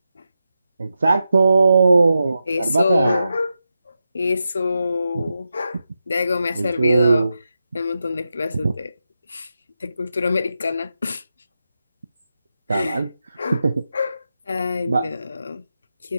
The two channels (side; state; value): both; inverted; correlation -0.88